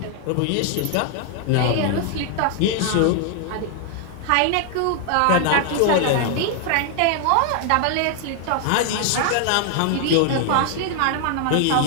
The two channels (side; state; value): both; different; correlation 0.00